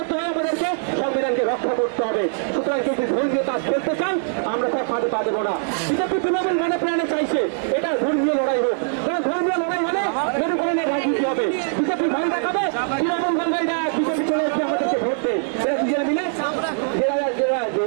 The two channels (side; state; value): left; silent; 57 dB below the other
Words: আমাদেরকে সংবিধানকে রক্ষা করতে হবে। সুতরাং কেউ যদি ধর্মীয় কাজ করতে চান, আমরা তার ফাঁদে পা দেবো না। বিজেপি তৃণমূল মনে প্রাণে চাইছে এটা ধর্মীয় লড়াই হোক, কারণ ধর্মীয় লড়াই হলে মেরুকরণের রাজনীতি হবে। বিজেপি ভয় দেখাবে, তৃণমূল বলবে বিজেপি চলে এসে আমাদেরকে ভোট দেয়। এরা দুজনে মিলে